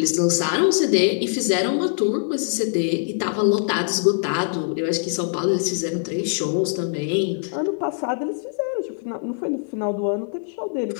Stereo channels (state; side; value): silent; right; 63 dB below the other